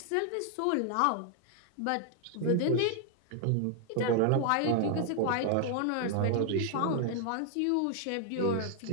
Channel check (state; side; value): different; both; correlation 0.00